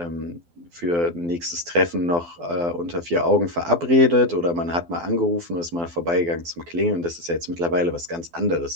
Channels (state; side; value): late; left; 12 ms